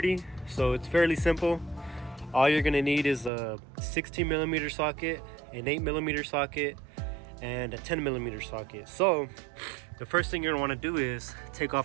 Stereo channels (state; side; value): drops out; left; at 3.3 s